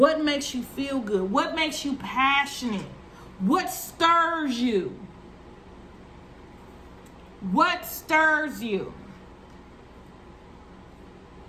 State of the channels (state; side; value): identical; both; correlation 1.00